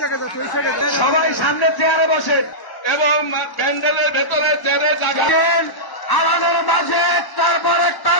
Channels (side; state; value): right; late; 1.1 ms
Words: সবাই সামনে চেয়ারে বসেন এবং প্যান্ডেলের ভেতরে চেয়ারে জাগান। আমাদের মাঝে তারপর একটা